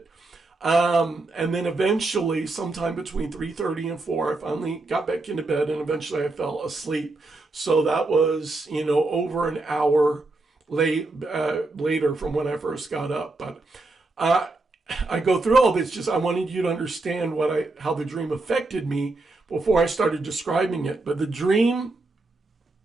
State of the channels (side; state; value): left; quieter; 3.1 dB